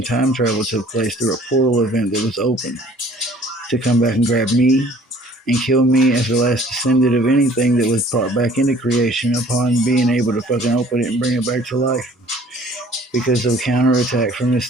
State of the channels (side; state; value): both; normal; correlation 0.53